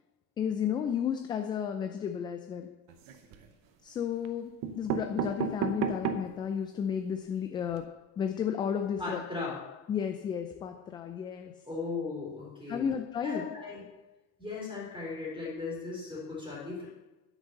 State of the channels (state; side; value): quieter; right; 4.3 dB